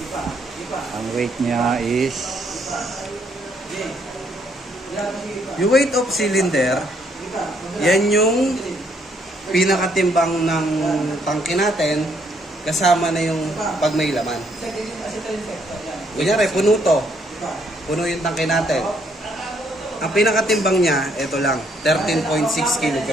Ang weight niya is Yung weight of cylinder, yan yung pinakatimbang ng tangke natin kasama na yung pag may laman. Kunyari, puno to. Puno yung tangke natin. Ang pinakatimbang niya, ito lang, 13.6 kg.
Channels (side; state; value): both; normal; correlation 0.70